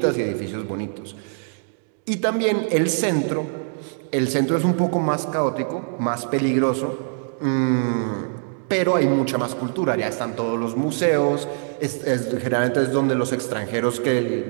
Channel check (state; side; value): silent; left; 63 dB below the other